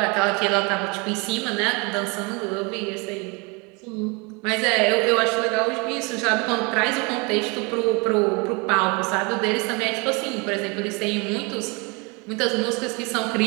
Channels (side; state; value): left; quieter; 29.4 dB